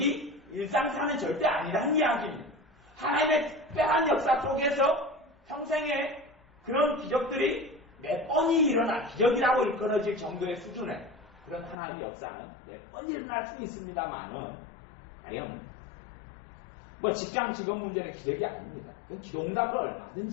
일상사는 절대 아니라는 이야기입니다. 하나님의 특별한 역사 속에서 평생에 그런 기적들이 몇 번이 일어나 기적이라고 일컬어질 정도의 수준의 그런 하나님의 역사는 몇 번 일어날 수 있습니다만은 과연 뭐 직장 직업 문제는 기적이 아닙니다. 그 기도응답을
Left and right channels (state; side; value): drops out; right; at 11.8 s